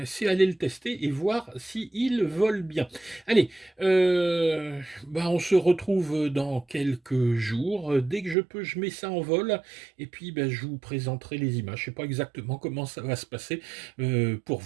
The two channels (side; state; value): left; drops out; at 8.3 s